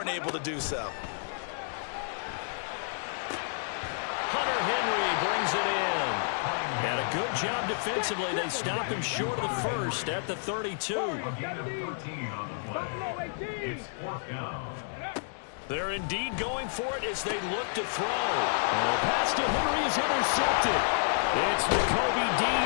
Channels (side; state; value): right; silent; digital silence